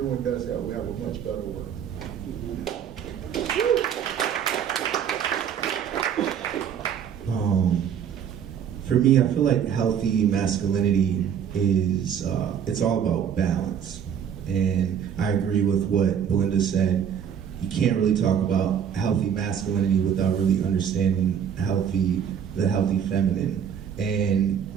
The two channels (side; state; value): left; quieter; 8.3 dB